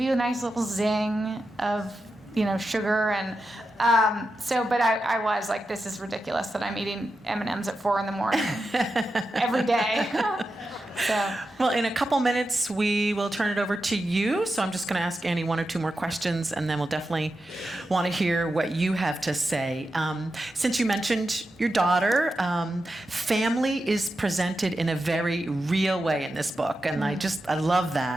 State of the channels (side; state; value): both; normal; correlation 0.90